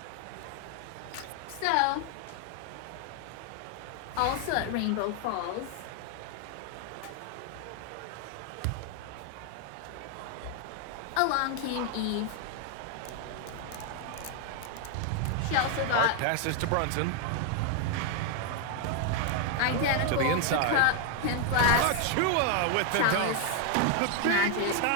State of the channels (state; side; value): different; both; correlation 0.01